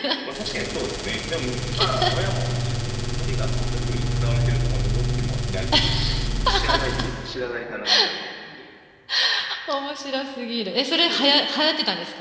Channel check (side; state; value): both; identical; correlation 1.00